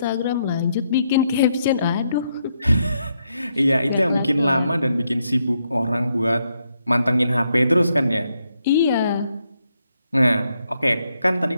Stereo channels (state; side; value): inverted; both; correlation -0.78